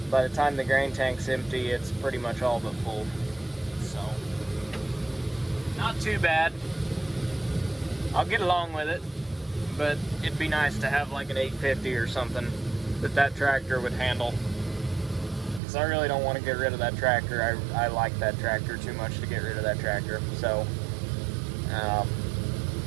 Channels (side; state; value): left; drops out; at 15.6 s